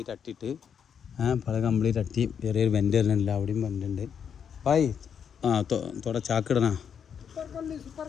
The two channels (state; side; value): quieter; right; 7.6 dB